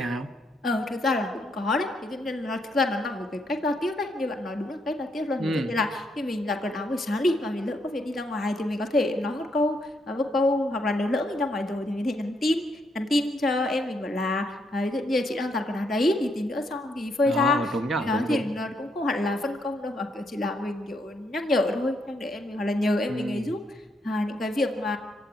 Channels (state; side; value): normal; both; correlation 0.76